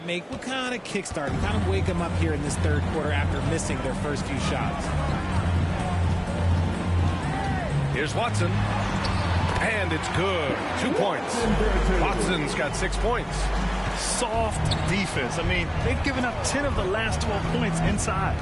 make will kind of kickstart and kind of wake them up here in this third quarter after missing their first few shots. Here's Watson. And it's good. 2 points. Watson's got 6 points. Soft defense. I mean, they've given up 10 of the last 12 points inside.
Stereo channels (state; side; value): identical; both; correlation 1.00